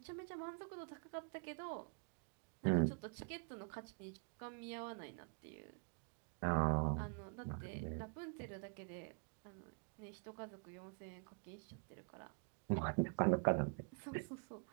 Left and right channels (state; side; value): quieter; left; 39.0 dB